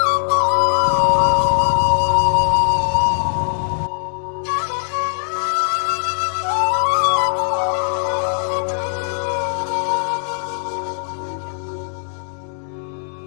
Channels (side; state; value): right; silent; digital silence